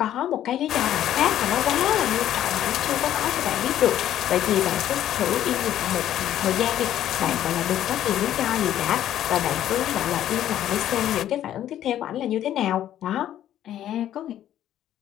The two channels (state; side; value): quieter; right; 11.7 dB